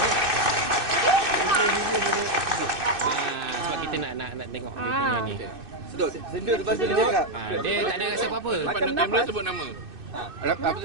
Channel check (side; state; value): left; late; 2.6 ms